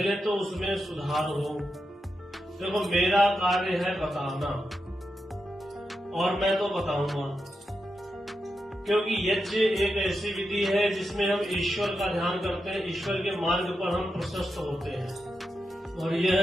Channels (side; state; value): both; normal; correlation 0.87